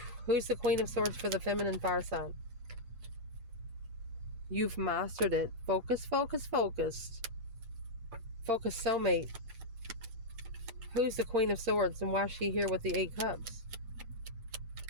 Who's the Queen of Swords for the feminine fire sign? You've mastered it. Focus, focus, focused. Focus, soulmate. Who's the Queen of Swords and why is she here with the 8 cups?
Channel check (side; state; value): left; late; 8.3 ms